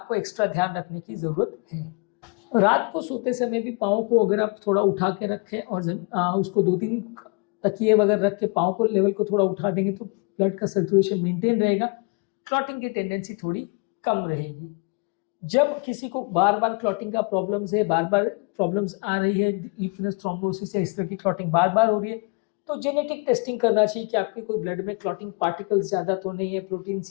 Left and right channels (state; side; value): quieter; right; 34.1 dB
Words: एक्स्ट्रा ध्यान रखने की ज़रूरत है। रात को सोते समय भी पाँव को अगर आप थोड़ा उठा के रखें और उसको 2-3 तकिए वगैरह रख के पाँव को लेवल को थोड़ा उठा देंगे तो ब्लड का सर्कुलेशन मेंटेन रहेगा, क्लॉटिंग की टेंडेंसी थोड़ी कम रहेगी। जब किसी को बार बार क्लॉटिंग का प्रॉब्लम्स है, बार बार प्रॉब्लम्स आ रही है, डीप वीनस थ्रोम्बोसिस है, इस तरह की क्लॉटिंग बार बार हो रही है, तो जेनेटिक टेस्टिंग करना चाहिए कि आपके कोई ब्लड में क्लॉटिंग पार्टिकल्स ज़्यादा तो नहीं है, protein